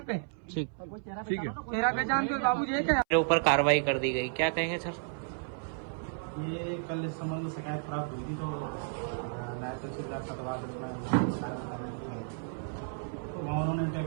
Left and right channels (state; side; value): silent; left; 56 dB below the other